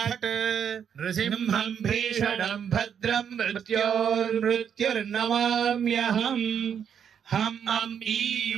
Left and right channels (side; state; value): left; quieter; 8.0 dB